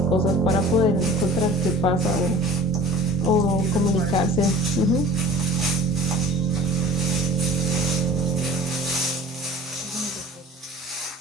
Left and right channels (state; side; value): normal; both; correlation 0.45